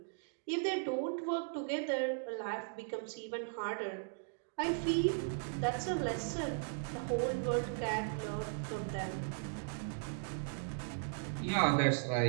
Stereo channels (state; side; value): silent; left; digital silence